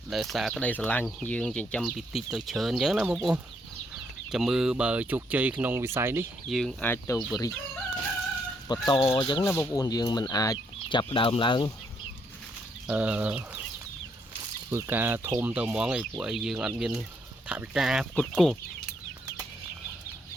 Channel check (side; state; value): both; normal; correlation 0.73